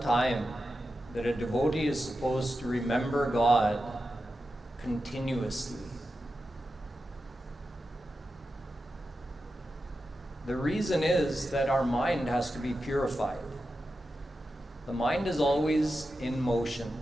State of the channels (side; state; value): both; normal; correlation 0.90